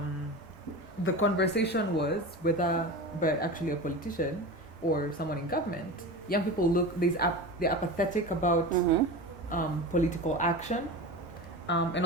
the conversation was whether, but actually a politician or someone in government, young people they're apathetic about political action. And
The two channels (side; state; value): both; normal; correlation 0.29